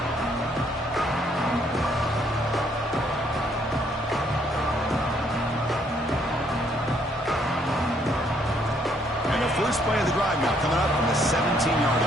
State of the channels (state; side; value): normal; both; correlation 0.68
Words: First play of the drive now coming up from the 17-yard